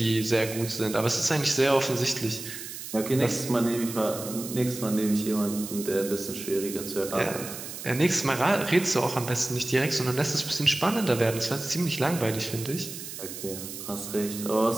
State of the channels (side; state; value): right; noise; hiss, 10 dB below the sound